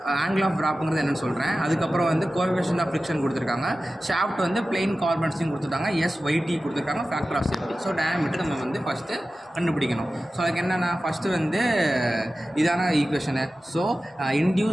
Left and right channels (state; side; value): normal; both; correlation 0.95